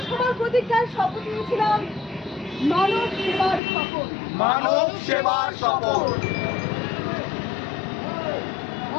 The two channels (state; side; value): drops out; right; at 3.6 s